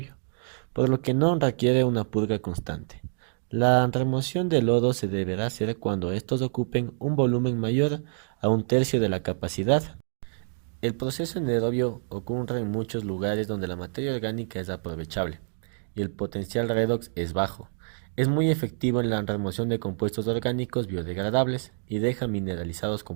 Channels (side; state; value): left; silent; digital silence